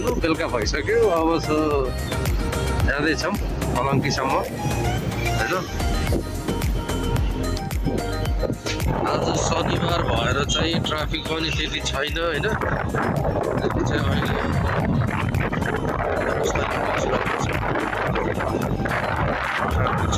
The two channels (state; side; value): identical; both; correlation 1.00